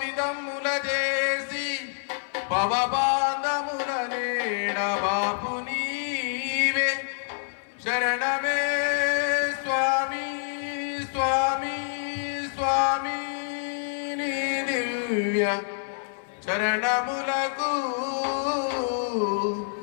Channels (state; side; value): silent; right; 60 dB below the other